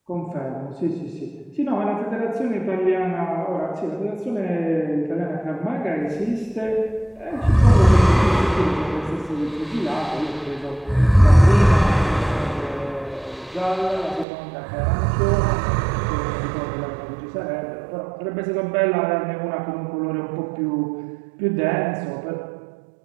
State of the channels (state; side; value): drops out; left; at 14.2 s